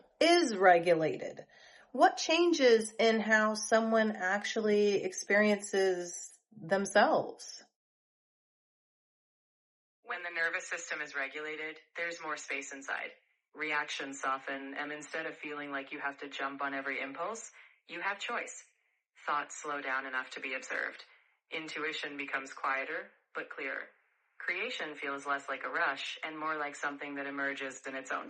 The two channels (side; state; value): both; identical; correlation 1.00